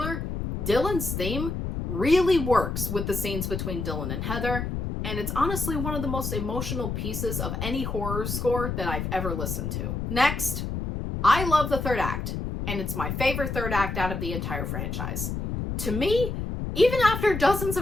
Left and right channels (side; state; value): left; noise; rumble, 3 dB below the sound